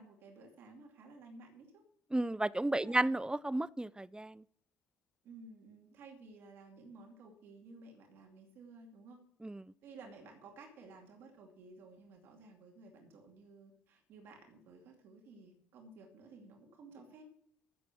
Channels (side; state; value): both; normal; correlation 0.94